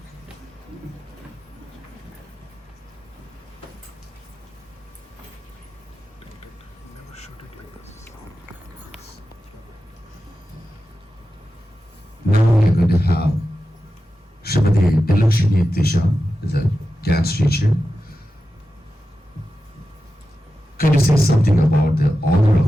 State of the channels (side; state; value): both; normal; correlation 0.92